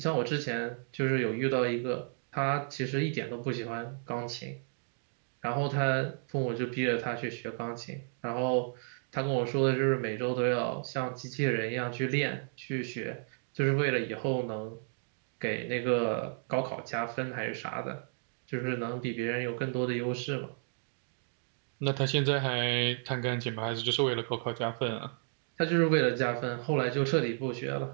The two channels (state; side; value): silent; left; 56 dB below the other